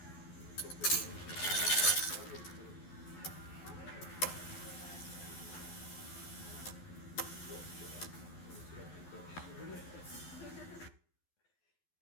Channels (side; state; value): right; late; 12 ms